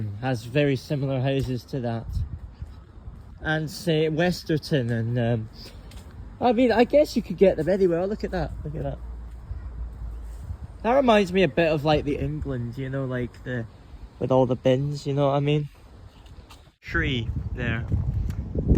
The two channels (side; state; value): both; identical; correlation 1.00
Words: has very similar houses to that. And say Westerton and I mean, I guess you could get them anywhere. Oh, look at that, look at that. That reminds me a bit of like the England, you know, like the, with all the bins, you know what I mean? Tree there.